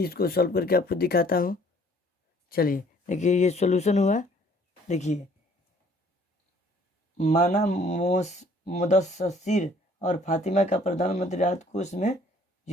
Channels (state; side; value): normal; both; correlation 0.58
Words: इसको सॉल्व करके आपको दिखाता हूँ। चलिए देखिए ये सॉल्यूशन हुआ। देखिए माना मुदस्सिर और फातिमा का प्रधानमंत्री राहत कोष में